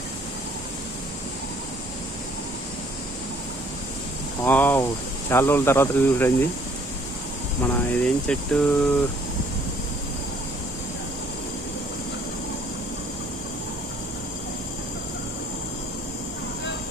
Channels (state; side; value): normal; both; correlation 0.61